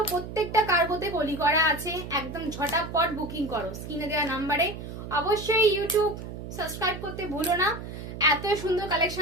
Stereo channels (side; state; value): right; noise; hum, 9 dB below the sound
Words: প্রত্যেকটা কার্গোতে কলি করা আছে, একদম ঝটাপট বুকিং করো স্ক্রিনে দেওয়া নাম্বারে। অবশ্যই ইউটিউব সাবস্ক্রাইব করতে ভুলো না, এত সুন্দর